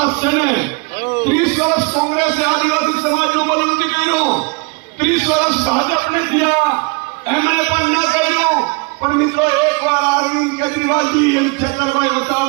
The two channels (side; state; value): left; quieter; 30.2 dB